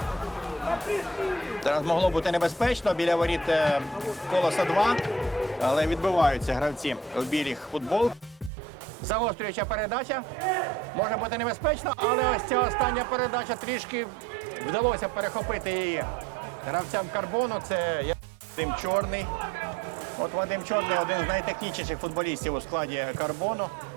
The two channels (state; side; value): drops out; left; at 8.5 s